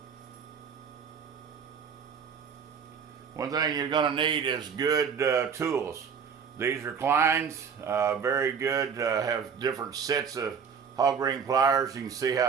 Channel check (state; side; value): quieter; left; 6.7 dB